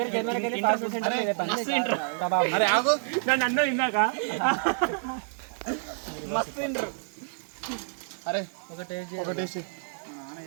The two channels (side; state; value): left; silent; digital silence